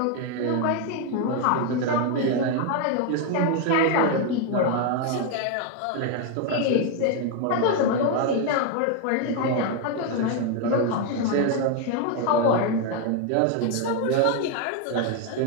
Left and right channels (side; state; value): both; different; correlation 0.01